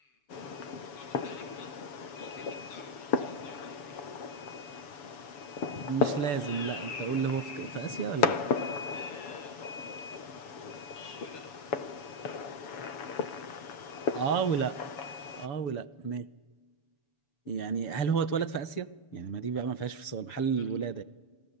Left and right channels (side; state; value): right; late; 7.0 ms